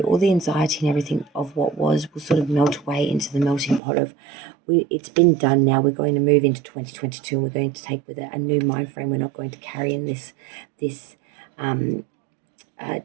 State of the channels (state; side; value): drops out; left; at 3.8 s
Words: all the anxiety and everything of what was will sort of melt away into the melting pot of, it's been done now. We're going to move into 2022, and we're going to take with it a new mind frame. We're not going to carry in this